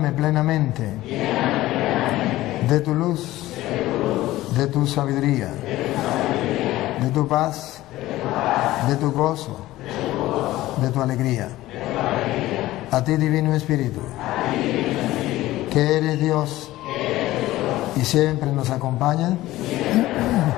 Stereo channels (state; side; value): quieter; right; 16.4 dB